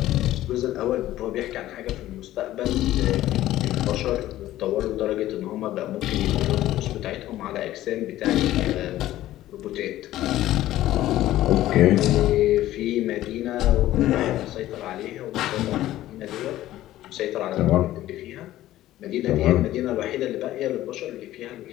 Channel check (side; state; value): right; quieter; 14.5 dB